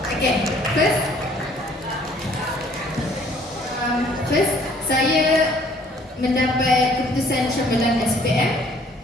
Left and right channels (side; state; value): both; normal; correlation 0.59